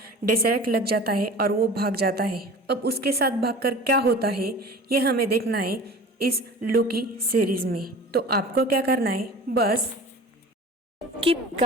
डेसरेक्ट लग जाता है और वो भाग जाता है। अब उसके साथ भागकर क्या होता है ये हमें देखना है इस लोकी सीरीज में। तो आपको क्या करना है, बस keep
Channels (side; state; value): both; normal; correlation 0.39